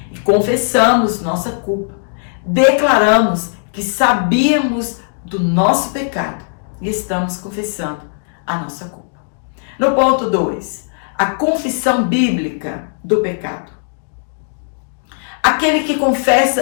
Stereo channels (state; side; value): silent; right; 68 dB below the other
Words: e confessamos nossa culpa, declaramos que sabíamos do nosso pecado e estamos confessando a nossa culpa. No ponto 2, a confissão bíblica do pecado. Aquele que